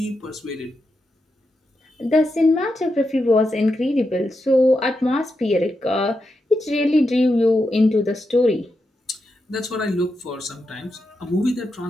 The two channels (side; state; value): both; normal; correlation 0.86